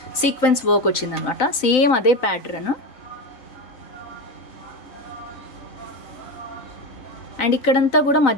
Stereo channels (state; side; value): late; right; 3.9 ms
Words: సీక్వెన్స్ వర్క్ వచ్చిందనమాట. సేమ్ అదే ప్యాటర్న్. అండ్ ఇక్కడంతా కూడా